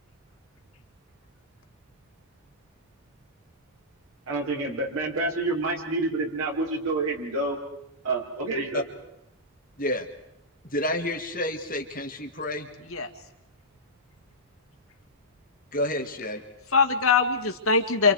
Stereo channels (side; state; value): both; normal; correlation -0.18